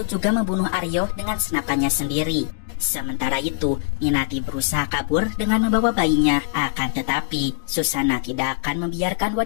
juga membunuh Aryo dengan senapannya sendiri. Sementara itu, Minati berusaha kabur dengan membawa bayinya. Akan tetapi, Susana tidak akan membiarkan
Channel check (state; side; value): silent; right; 64 dB below the other